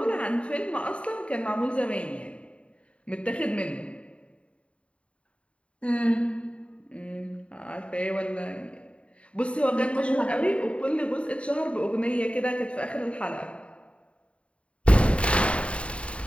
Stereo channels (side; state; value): right; late; 0.062 ms